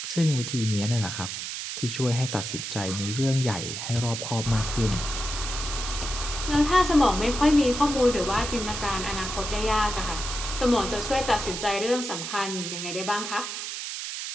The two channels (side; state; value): right; noise; hiss, 5 dB below the sound